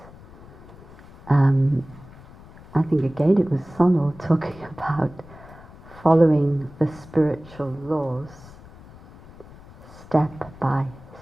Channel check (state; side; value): noise; left; rumble, 20 dB below the sound